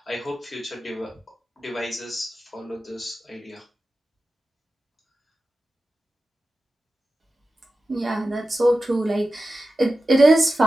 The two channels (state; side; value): normal; both; correlation 0.93